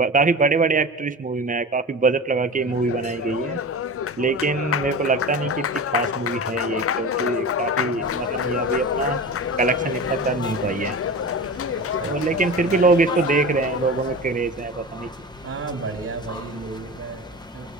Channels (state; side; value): normal; both; correlation 0.30